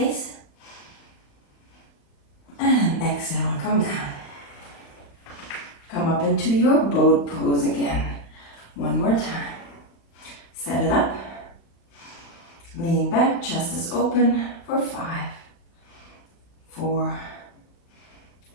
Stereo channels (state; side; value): late; right; 35 ms